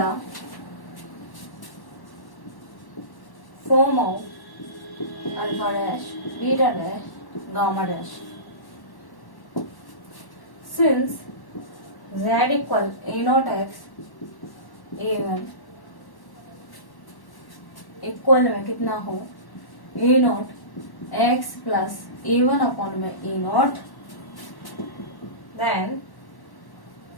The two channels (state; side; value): late; right; 1.1 ms